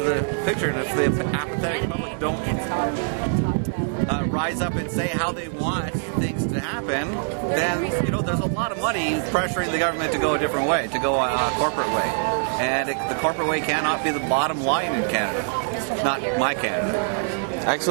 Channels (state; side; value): silent; left; 63 dB below the other